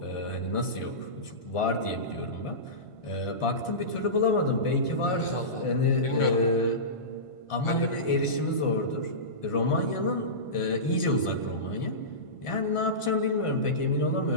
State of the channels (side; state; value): right; late; 1.5 ms